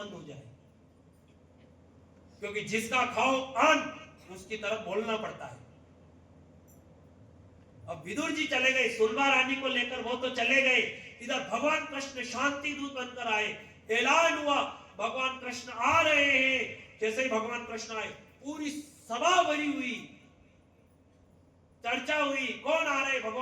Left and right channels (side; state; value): both; identical; correlation 1.00